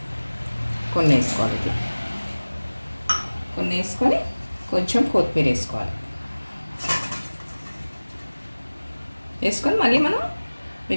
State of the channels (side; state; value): both; inverted; correlation -1.00